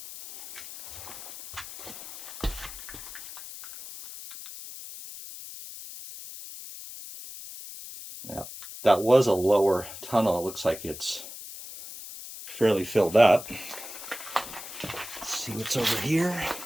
Now, that was a lower tunnel. It looks like it's fairly filled up. Let's see what's over here.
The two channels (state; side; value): noise; left; hiss, 12 dB below the sound